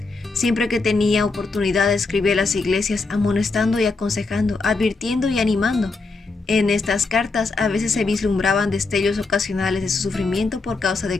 Siempre que tenía oportunidad escribía a las iglesias amonestando y aconsejando, advirtiendo y animando. En estas cartas a veces se vislumbraban destellos ocasionales de su sufrimiento por causa de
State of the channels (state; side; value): quieter; right; 3.9 dB